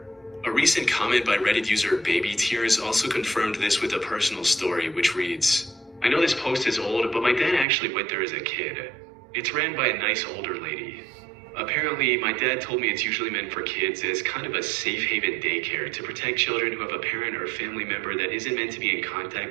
A recent comment by Reddit user Baby Tears also confirmed this with a personal story, which reads, "I know this post is old, but my dad actually went there as a kid. It's ran by a nice older lady. Apparently, my dad told me it's usually meant for kids as kind of a safe haven daycare to protect children who have a parent or family member that isn't meant to be in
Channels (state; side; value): drops out; left; at 7.7 s